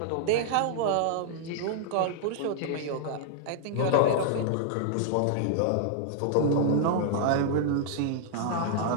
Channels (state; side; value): different; both; correlation -0.01